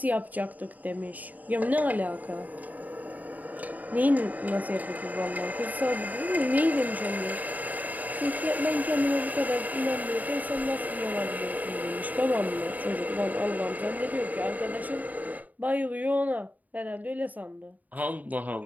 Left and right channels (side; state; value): left; late; 0.077 ms